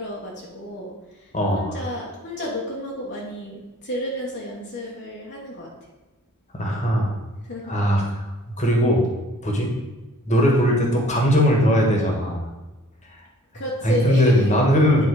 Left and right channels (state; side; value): normal; both; correlation 0.55